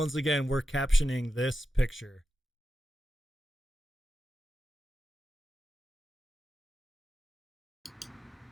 again, we're captioning this picture.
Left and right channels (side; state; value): both; normal; correlation 0.90